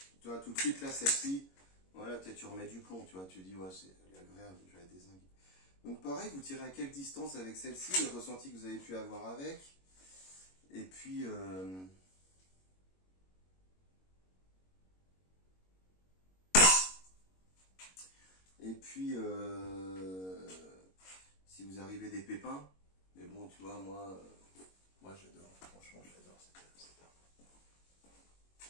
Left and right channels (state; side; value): late; right; 22 ms